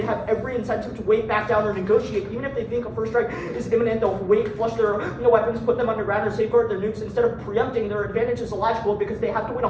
have every incentive to wait back down or negotiate. Even if they think a first strike is imminent, they'll wait, flush their weapons, put them underground, or safeguard their nukes. Instead of preempting, their advantage is illogical, because they have to win a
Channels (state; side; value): identical; both; correlation 1.00